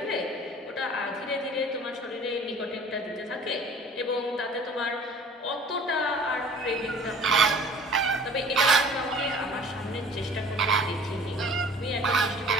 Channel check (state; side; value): normal; both; correlation 0.47